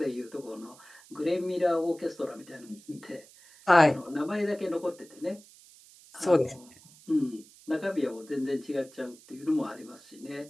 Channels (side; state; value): right; noise; hiss, 23 dB below the sound